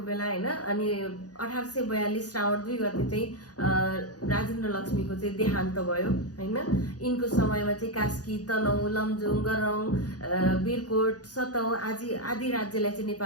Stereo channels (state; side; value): late; right; 0.68 ms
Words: बेला होइन। अनि 1842 श्रावण 2 गते चाहिँ राजेन्द्र लक्ष्मीको चाहिँ देहान्त भयो होइन। यिनको समयमा चाहिँ कास्की, तनहुँ, लमजुङ, गरौँ, वीरकोट, सतौँ आदि राज्यलाई चाहिँ